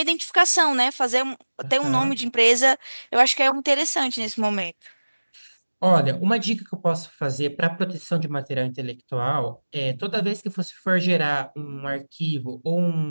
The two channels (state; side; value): inverted; both; correlation -1.00